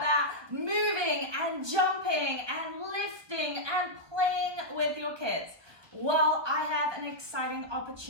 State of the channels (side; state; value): left; late; 1.5 ms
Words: moving and jumping and lifting and playing with your kids? Well, I have an exciting